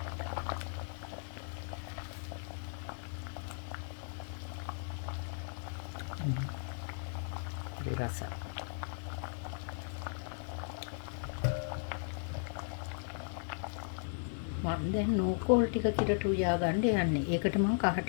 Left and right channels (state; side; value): silent; right; digital silence